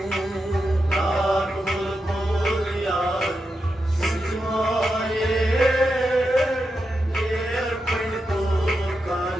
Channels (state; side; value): normal; both; correlation 0.87